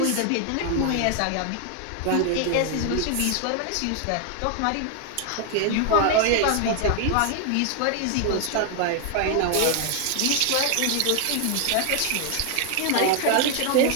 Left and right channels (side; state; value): both; different; correlation 0.00